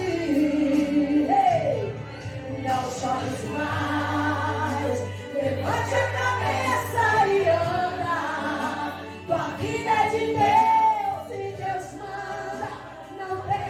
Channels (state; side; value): identical; both; correlation 1.00